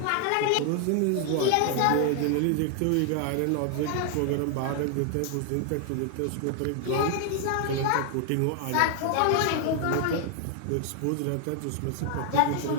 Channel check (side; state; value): both; different; correlation 0.00